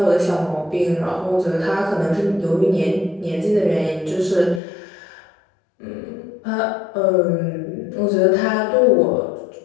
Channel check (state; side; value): drops out; right; at 4.6 s